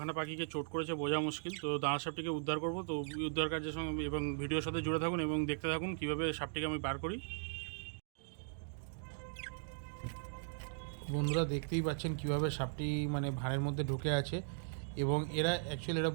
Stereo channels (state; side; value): silent; left; digital silence